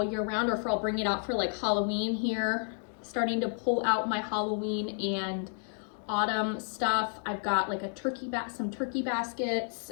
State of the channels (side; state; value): right; silent; 57 dB below the other